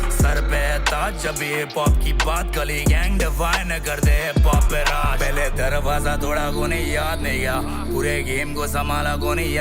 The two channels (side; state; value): both; identical; correlation 1.00